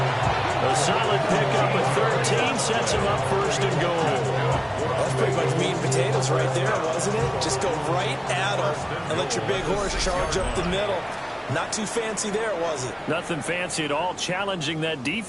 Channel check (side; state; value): both; identical; correlation 1.00